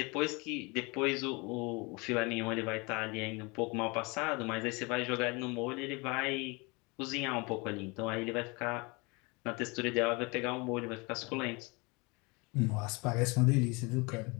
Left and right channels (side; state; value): right; quieter; 27.7 dB